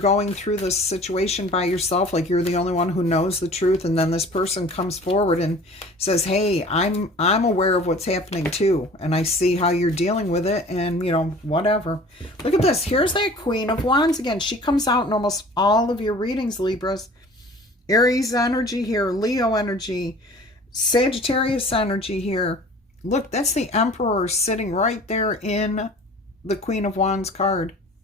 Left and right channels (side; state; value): both; normal; correlation 0.46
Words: through this situation by yourself, like you're the only one who knows the truth, and then this person comes forward and says, hey, I'm aware of what's happening too, and I see how you're dealing with it, and, you know, whatever. Look at this. Here's that Queen of Wands again. She comes out in almost all of your readings, Libras. Aries energy here, Leo energy, Sagittarius energy here. Look, that's the Emperor sitting right there in the Queen of Wands card.